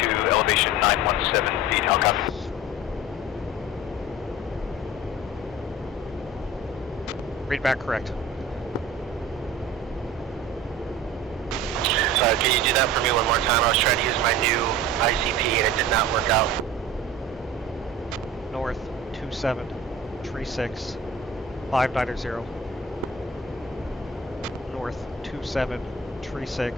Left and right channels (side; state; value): both; normal; correlation 0.39